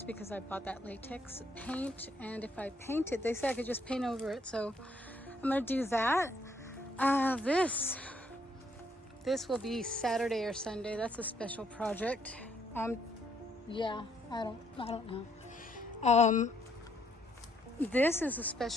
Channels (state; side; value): normal; both; correlation 0.70